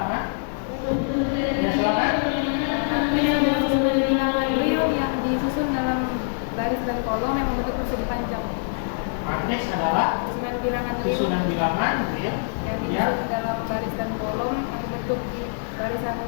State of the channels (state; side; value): silent; right; digital silence